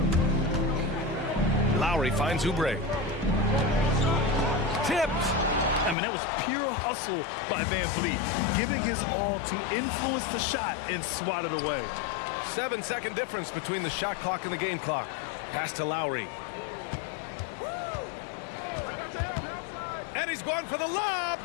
Lowry finds Oubre. Tipped. I mean, that was pure hustle by Van Vliet, giving his all to influence the shot and swat it away. 7-second difference between the shot clock and the game clock. Pass to Lowry. And he's going for the lob.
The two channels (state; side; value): drops out; right; at 6.0 s